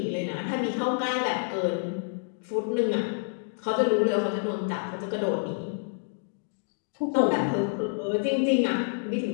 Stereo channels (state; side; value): silent; right; digital silence